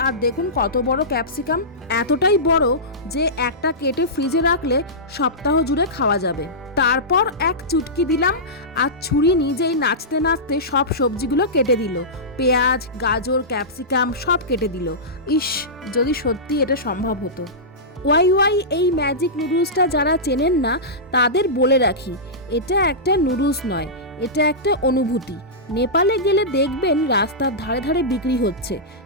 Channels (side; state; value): both; normal; correlation -0.16